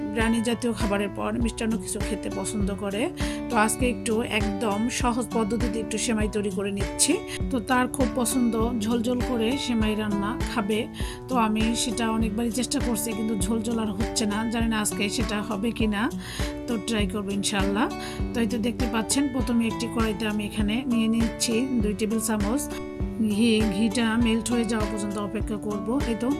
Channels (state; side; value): identical; both; correlation 1.00